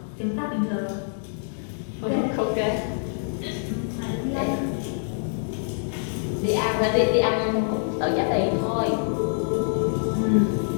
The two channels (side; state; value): right; silent; digital silence